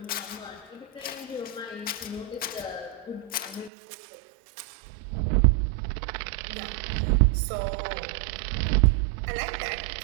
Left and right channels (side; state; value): left; drops out; at 3.7 s